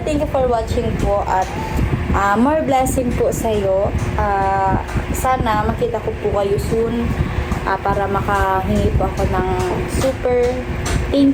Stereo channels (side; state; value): both; identical; correlation 1.00